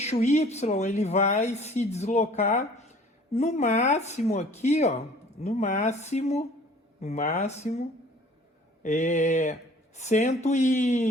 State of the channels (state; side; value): normal; both; correlation 0.51